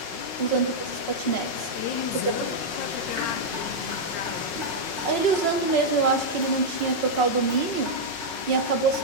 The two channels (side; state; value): right; late; 5.4 ms